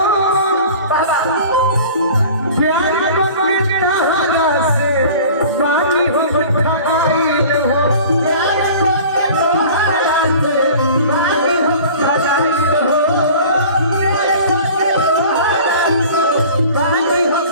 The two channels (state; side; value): inverted; both; correlation -0.43